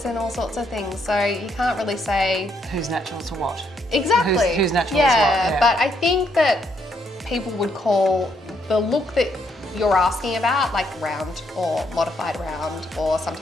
and all sorts of things. So you can't really say who's natural to what. Exactly. Who's natural to what. Yeah, but I think that people would call the look that you're asking about like round or modified round, or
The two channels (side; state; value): both; normal; correlation 0.73